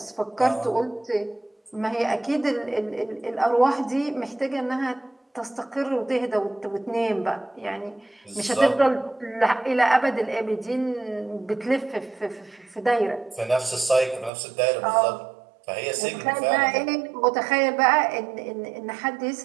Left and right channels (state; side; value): drops out; left; at 14.3 s